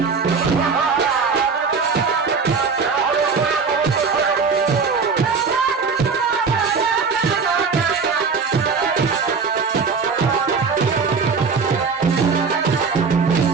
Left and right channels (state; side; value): quieter; left; 5.1 dB